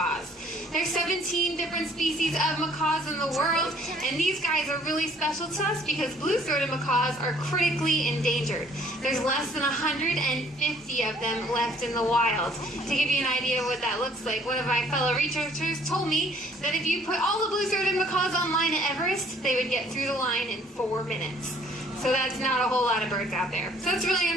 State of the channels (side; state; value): both; normal; correlation 0.59